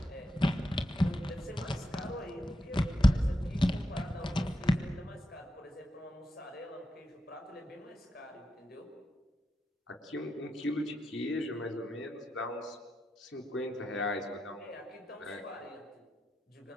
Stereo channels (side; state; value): both; normal; correlation 0.86